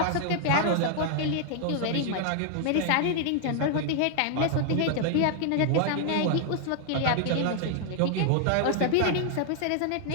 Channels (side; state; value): both; different; correlation 0.00